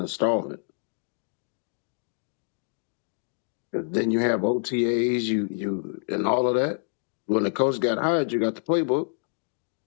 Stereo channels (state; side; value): silent; right; digital silence